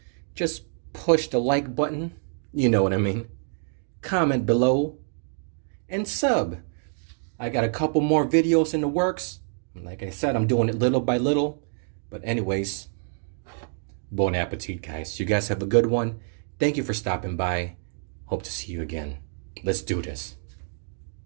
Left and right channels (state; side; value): silent; left; 60 dB below the other